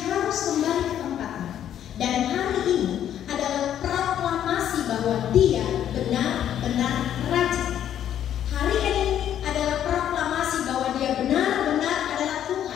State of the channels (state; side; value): quieter; right; 10.4 dB